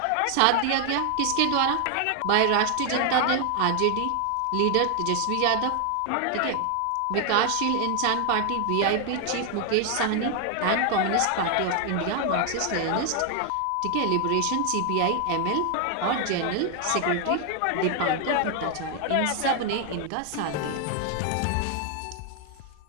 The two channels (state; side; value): different; both; correlation 0.00